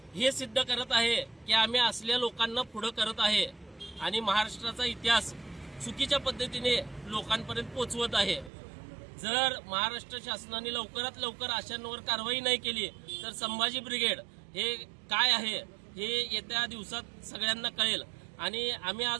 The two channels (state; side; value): drops out; left; at 8.5 s